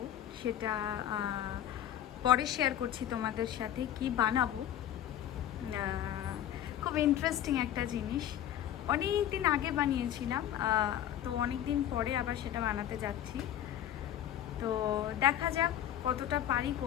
সেটা পরে শেয়ার করছি তোমাদের সাথে কি বানাবো। খুব ইন্টারেস্টিং একটা জিনিস, অনেক দিন আগে বানিয়েছিলাম, তো অনেক দিন পরে আবার সেটা বানাতে যাচ্ছি। তো দেখা যাক কতটা পারি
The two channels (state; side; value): quieter; right; 11.2 dB